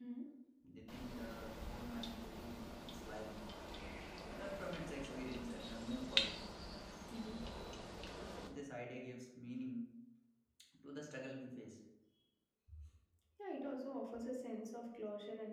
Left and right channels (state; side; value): identical; both; correlation 1.00